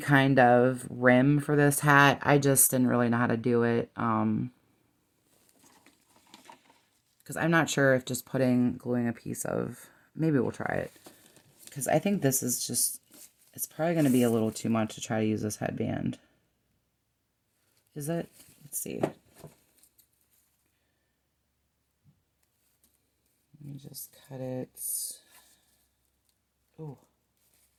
of rim for this hat. I just didn't really know how to do it. Because I'm not sure if just gluing a piece of, maybe we'll try it. Because I think this is just, it's probably going to be a little too much to try to use this headband. Is it? Let's see. Let me just cut it. Oh.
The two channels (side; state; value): both; identical; correlation 1.00